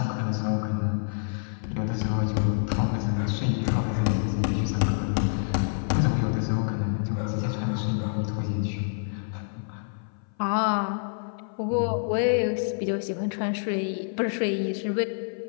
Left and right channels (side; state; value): right; silent; 57 dB below the other